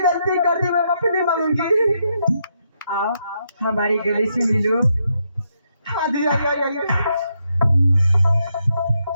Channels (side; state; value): both; inverted; correlation -0.79